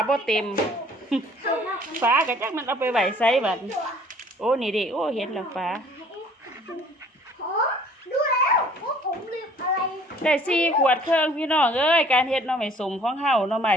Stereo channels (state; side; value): normal; both; correlation 0.55